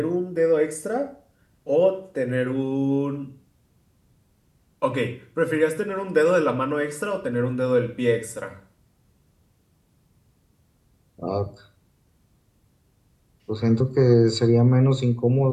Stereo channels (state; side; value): identical; both; correlation 1.00